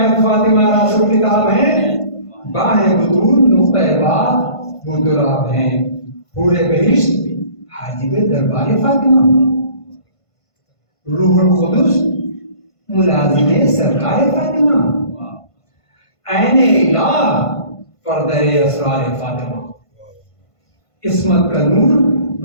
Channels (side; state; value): right; late; 1.5 ms